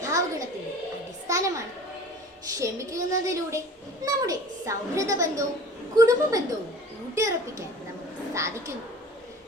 ഗുണത്തിന്റെ അടിസ്ഥാനമാണ്. ക്ഷമിക്കുന്നതിലൂടെ നമ്മുടെ സൗഹൃദ ബന്ധവും കുടുംബ ബന്ധവും ഊട്ടിയുറപ്പിക്കാൻ നമുക്ക് സാധിക്കുന്നു.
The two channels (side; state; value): both; normal; correlation 0.43